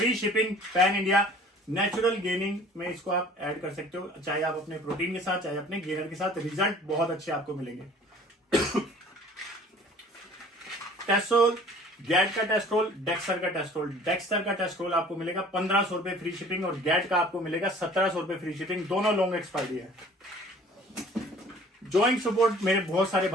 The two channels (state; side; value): normal; both; correlation 0.49